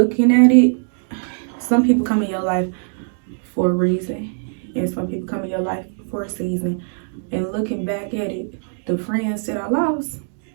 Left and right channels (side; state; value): left; silent; 65 dB below the other